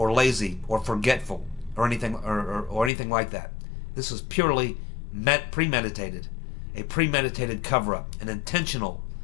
lazy or forgetful or anything or anything like that. This was purely premeditated, a premeditated cover-up, an intentional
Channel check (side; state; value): right; drops out; at 2.9 s